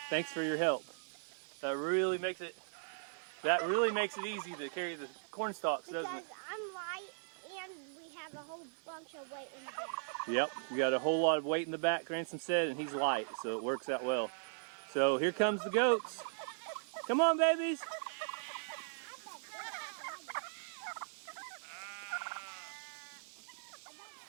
Thanks for your help. That really makes it easy to carry the corn stalks, doesn't it? Because I'm light and we have a whole bunch of weight in the back. Yep, we got a whole lot of weight in the back, Ransom said, and he's light, so it works out well. So here comes the goats. Come on, babies.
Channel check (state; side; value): silent; left; digital silence